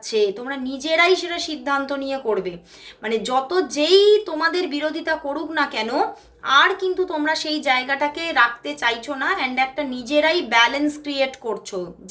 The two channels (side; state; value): both; identical; correlation 1.00